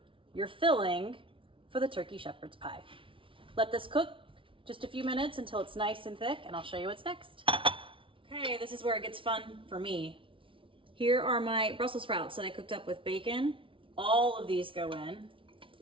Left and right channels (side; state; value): left; late; 0.25 ms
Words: your filling for the turkey shepherd's pie. Let this cook just a few minutes until it's nice and thick, and I'll show you what's next. Okay, this is where it gets fun for me. Here are my Brussels sprouts that I cooked up with bacon. All of these go in.